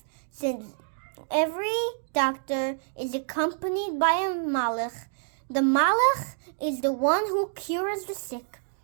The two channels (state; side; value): silent; left; digital silence